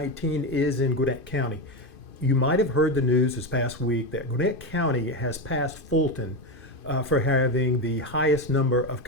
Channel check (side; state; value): right; late; 2.5 ms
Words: is in Gwinnett County. You might have heard the news this past week that Gwinnett County has passed Fulton for having the highest number of